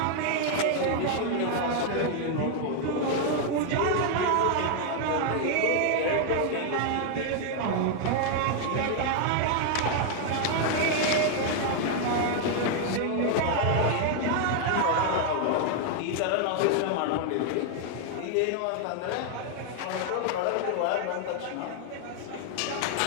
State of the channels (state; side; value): different; both; correlation 0.00